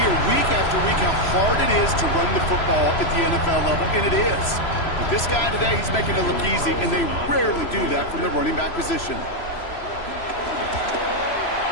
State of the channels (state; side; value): late; right; 3.0 ms